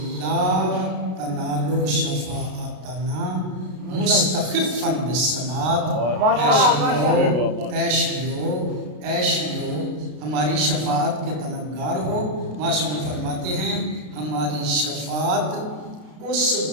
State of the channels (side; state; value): left; late; 33 ms